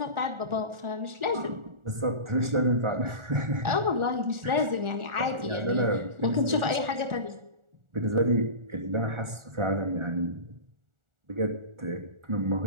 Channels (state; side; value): late; left; 1.4 ms